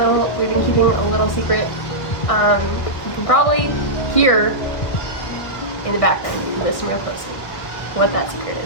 been keeping a little secret. You can probably hear in the background, if you listen real closely, what that secret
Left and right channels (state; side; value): late; right; 1.5 ms